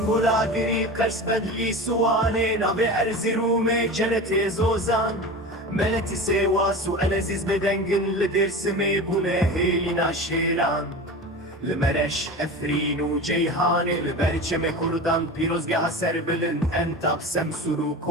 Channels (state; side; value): normal; both; correlation 0.30